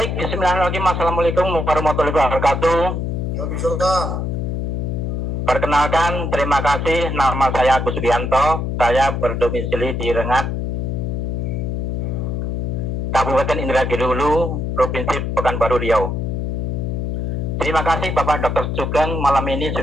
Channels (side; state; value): left; noise; hum, 1 dB below the sound